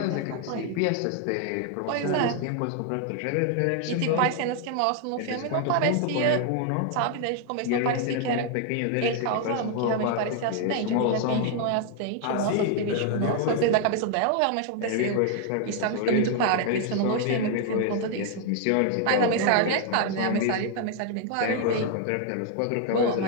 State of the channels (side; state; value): both; different; correlation 0.00